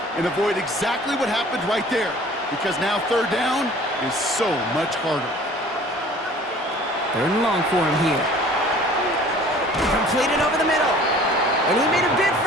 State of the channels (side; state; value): both; normal; correlation 0.49